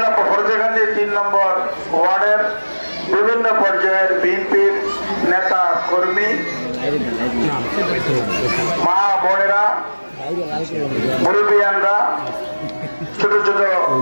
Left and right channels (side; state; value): both; inverted; correlation -1.00